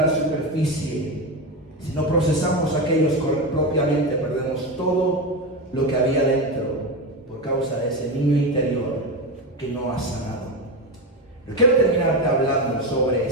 la superficie. Si no procesamos aquellos propiamente, perdemos todo lo que había dentro por causa de ese niño interior que no ha sanado. Pero quiero terminarte hablando sobre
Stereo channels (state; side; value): normal; both; correlation 0.16